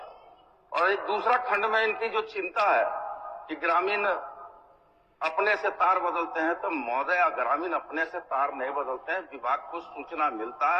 और एक दूसरा खंड में इनकी जो चिंता है कि ग्रामीण अपने से तार बदलते हैं, तो महोदय ग्रामीण अपने से तार नहीं बदलते हैं, विभाग को सूचना मिलता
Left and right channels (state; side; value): identical; both; correlation 1.00